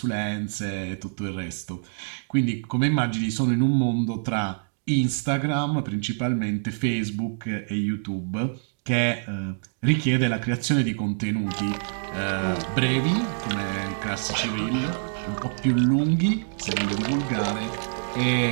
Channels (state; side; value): silent; left; digital silence